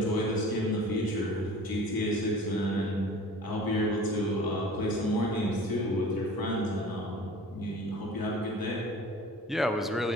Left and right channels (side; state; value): both; normal; correlation 0.43